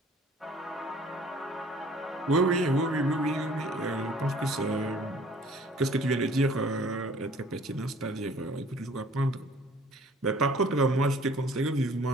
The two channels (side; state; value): both; normal; correlation 0.53